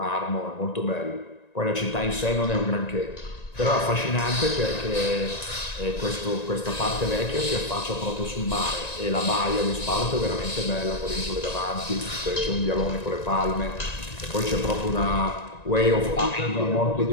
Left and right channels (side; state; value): right; late; 1.9 ms